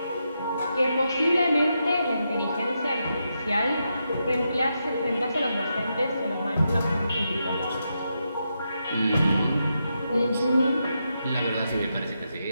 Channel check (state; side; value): inverted; both; correlation -0.85